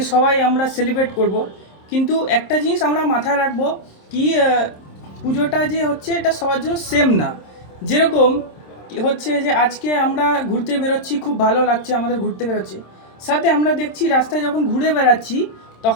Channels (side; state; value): right; late; 26 ms